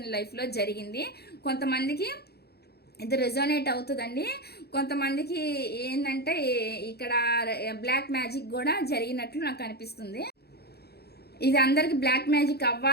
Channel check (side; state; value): right; late; 0.47 ms